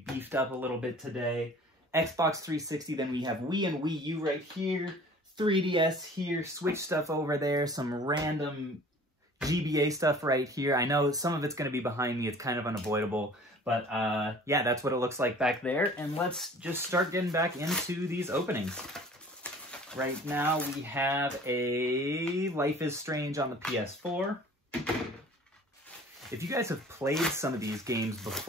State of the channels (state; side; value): normal; both; correlation 0.48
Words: beefed up a little bit today. Xbox 360, then we have Wii and Wii U right here. 3DS here, Switch stuff over there, some random GBA stuff right here. I know some of it's going to be behind me. It's kind of unavoidable. But yeah, that's what it looks like back there. And let's just start getting back into these openings. Right now we have a Life is Strange on the PS4. If you guys have played some of these games